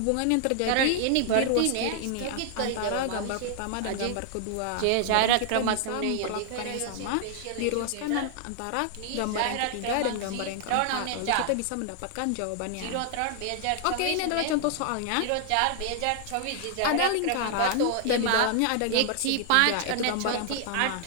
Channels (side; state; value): both; different; correlation 0.00